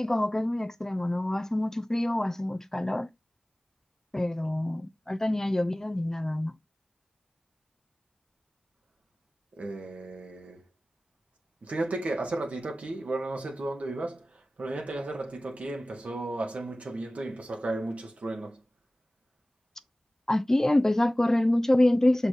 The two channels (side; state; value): both; normal; correlation 0.98